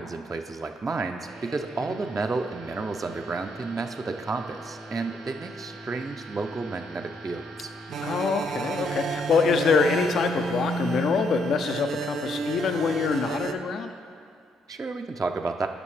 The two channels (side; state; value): both; normal; correlation 0.73